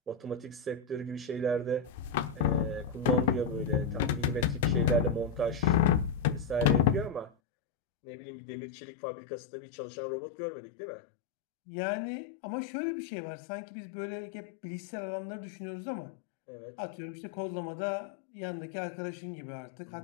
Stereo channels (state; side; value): drops out; right; at 7.3 s